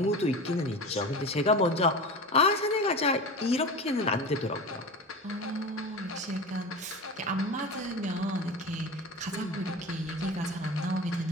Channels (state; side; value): normal; both; correlation 0.29